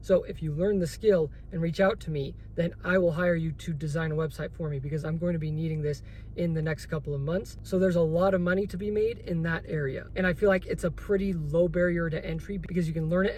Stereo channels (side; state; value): both; identical; correlation 1.00